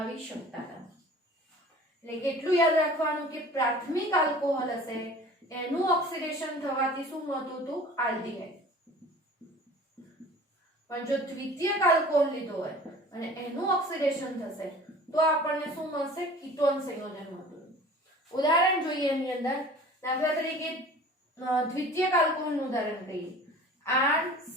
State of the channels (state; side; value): normal; both; correlation 0.44